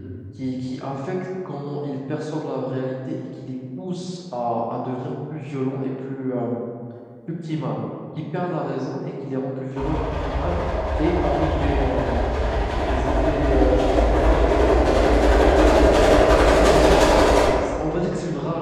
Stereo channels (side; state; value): both; identical; correlation 1.00